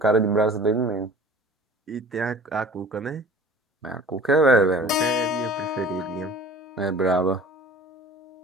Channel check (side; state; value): both; normal; correlation 0.44